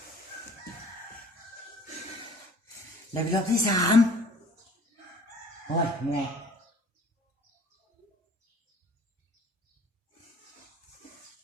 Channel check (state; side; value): normal; both; correlation 0.50